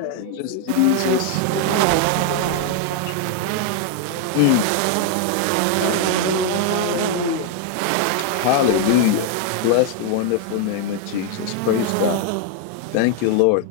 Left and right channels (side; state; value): both; different; correlation 0.01